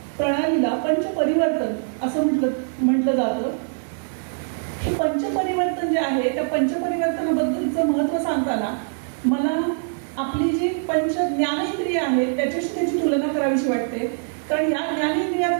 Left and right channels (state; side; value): silent; left; digital silence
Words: प्रणालीला पंचपरिवर्तन असं म्हटलं जातं. हे पंचपरिवर्तन जे आहे त्या पंचपरिवर्तनाबद्दलचं महत्त्व सांगताना मला आपली जी पंच ज्ञानेंद्रिय आहेत त्याच्याशी त्याची तुलना करावीशी वाटते. कारण या